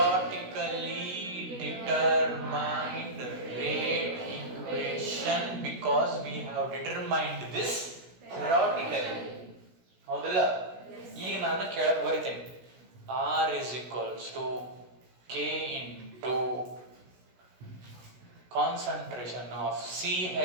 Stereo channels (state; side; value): late; left; 16 ms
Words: determined rate equation because we have determined this theoretically. ಹೌದಲ್ಲ? ಈಗ ನಾನು ಕೆಳಗೆ ಬರಿತೇನೆ. R is equals to K into concentration of